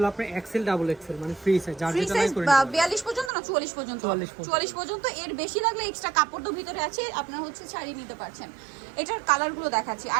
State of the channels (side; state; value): left; drops out; at 3.3 s